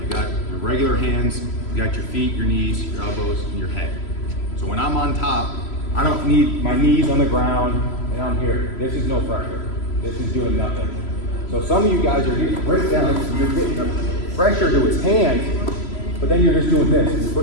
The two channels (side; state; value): right; late; 3.0 ms